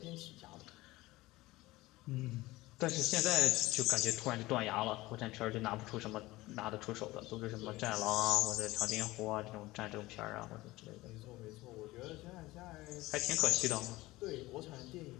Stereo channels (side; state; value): right; quieter; 19.2 dB